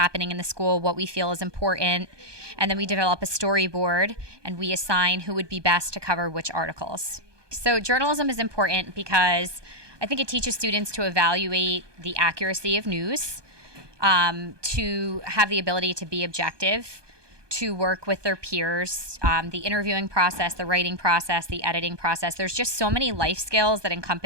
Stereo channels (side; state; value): left; late; 1.2 ms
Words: in the school, what we feel is important, and then we develop a storyboard and we assign who would be best to cover which articles. So journalism is important because I think it teaches students to evaluate the accuracy of news, to have the ability to be objective, to work with their peers, the interviewing process, the writing process, the editing process. There's just so many life skills that